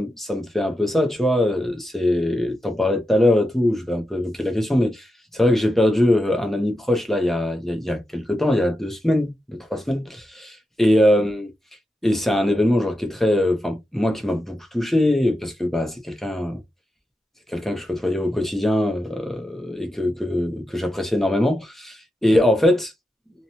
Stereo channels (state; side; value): normal; both; correlation 0.88